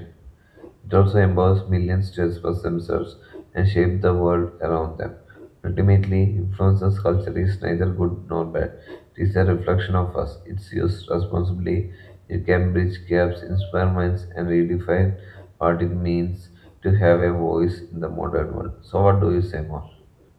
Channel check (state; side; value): identical; both; correlation 1.00